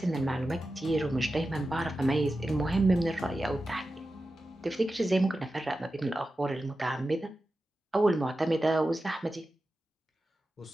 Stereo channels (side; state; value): both; normal; correlation 0.92